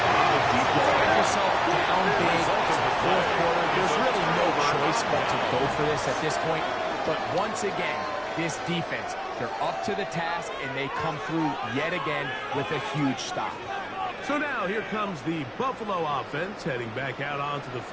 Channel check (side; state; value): both; identical; correlation 1.00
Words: You find yourself down big, it's the fourth quarter. There's really no choice but to go for this at this point. But once again, this defense, they're up to the task, and they come through yet again with a huge stop. So now here comes the Buffalo offense heading back out onto the